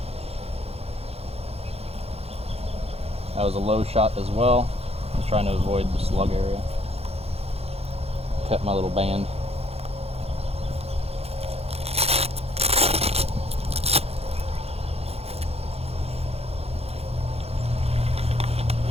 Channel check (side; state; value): left; late; 0.29 ms